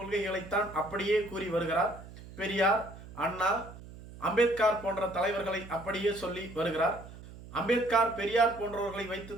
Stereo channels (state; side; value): noise; right; hum, 16 dB below the sound